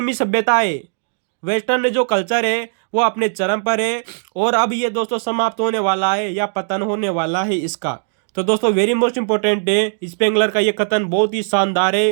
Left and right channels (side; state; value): left; silent; digital silence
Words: सभ्यता है, वेस्टर्न जो कल्चर है वो अपने चरम पर है और अब ये दोस्तों समाप्त होने वाला है या पतन होने वाला है इसका। तो दोस्तों वेरी मोस्ट इंपॉर्टेंट है, स्पेंगलर का ये कथन बहुत ही शानदार